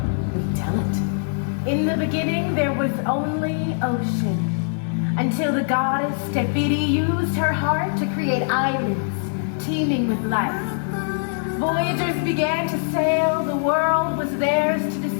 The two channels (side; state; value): right; silent; digital silence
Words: we tell it. In the beginning, there was only ocean, until the goddess Tefiti used her heart to create islands teeming with life. Voyagers began to sail, the world was theirs to